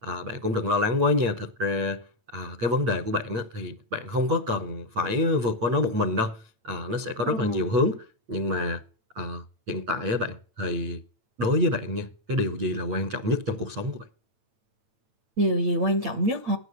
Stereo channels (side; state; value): left; late; 9.0 ms